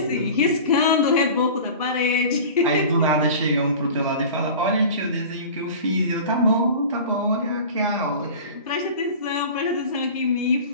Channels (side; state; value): both; inverted; correlation -0.37